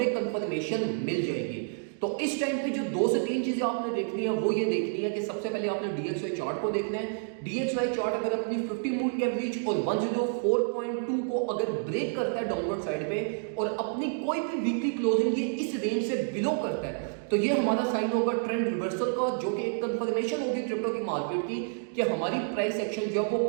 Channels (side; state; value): left; silent; digital silence